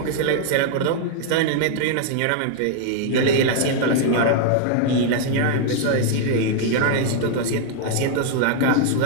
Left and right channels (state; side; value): different; both; correlation 0.00